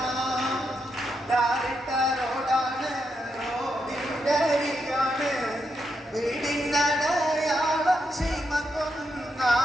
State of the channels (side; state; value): both; normal; correlation 0.83